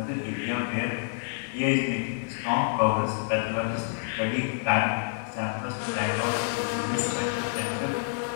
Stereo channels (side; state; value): right; silent; 59 dB below the other